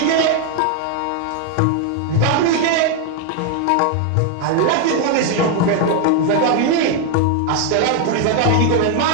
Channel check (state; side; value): different; both; correlation 0.00